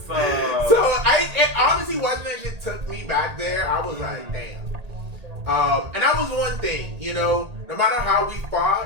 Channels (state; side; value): late; left; 1.8 ms